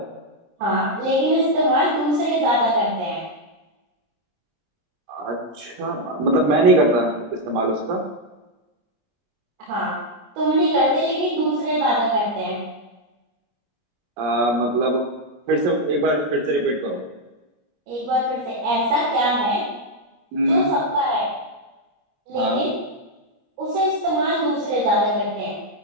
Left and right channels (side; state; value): left; late; 17 ms